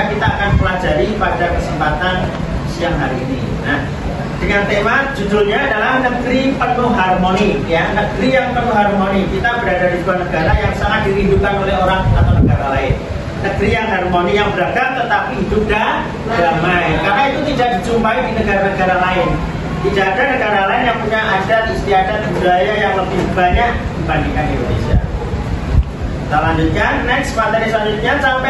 kita akan pelajari pada kesempatan siang hari ini. Nah, dengan tema judulnya adalah negeri penuh harmoni, ya, negeri yang penuh harmoni. Kita berada di sebuah negara yang sangat dirindukan oleh orang atau negara lain. Negeri yang harmoni, yang beragam tetapi hidup damai. Karena itu tidak dijumpai di negara-negara lain. Tidak ada negara lain yang punya adat, istiadat, budaya yang lebih banyak dibandingkan Indonesia. Kita lanjutkan, next materi selanjutnya,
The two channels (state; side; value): identical; both; correlation 1.00